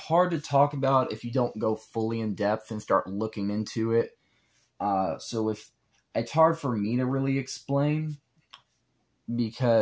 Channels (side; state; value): both; identical; correlation 1.00